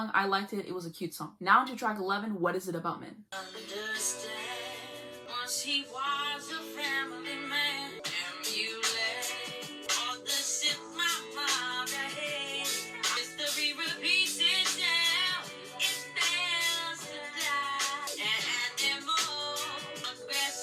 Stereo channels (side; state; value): both; identical; correlation 1.00